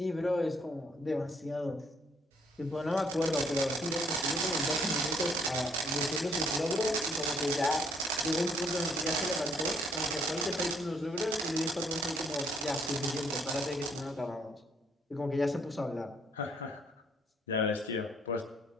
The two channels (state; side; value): normal; both; correlation 0.66